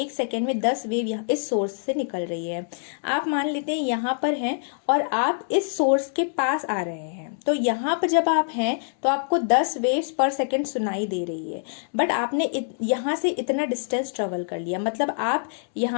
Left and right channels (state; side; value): silent; right; digital silence